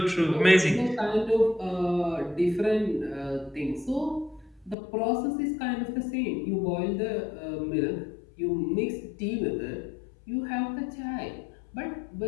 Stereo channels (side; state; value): right; drops out; at 4.8 s